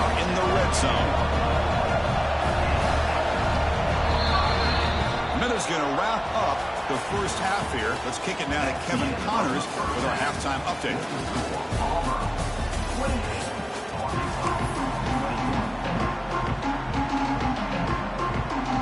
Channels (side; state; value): both; identical; correlation 1.00